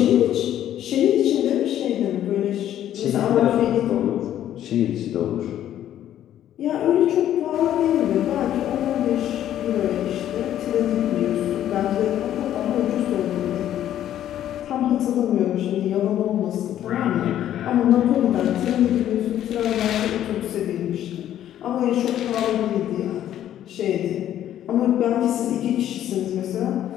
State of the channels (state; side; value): quieter; right; 11.5 dB